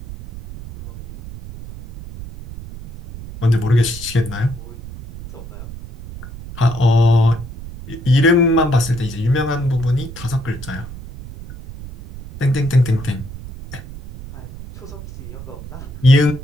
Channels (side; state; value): right; noise; rumble, 13 dB below the sound